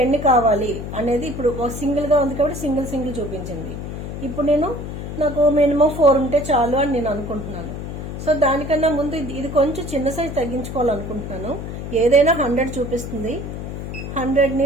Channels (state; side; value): noise; left; hum, 7 dB below the sound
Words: ఎన్ని కావాలి అనేది ఇప్పుడు సింగిల్ గా ఉంది కాబట్టి సింగిల్ చూపించింది. ఇప్పుడు నాకు మినిమం 4 ఉంటే చాలు అని నేను అనుకుంటున్నాను. సో దానికన్నా ముందు ఇది కొంచెం చిన్న సైజ్ తగ్గించుకోవాలనుకుంటున్నాను. ఏదైనా 100 చూపిస్తుంది, 100ని